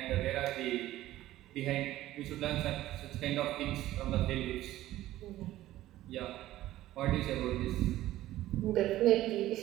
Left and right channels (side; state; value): left; quieter; 15.0 dB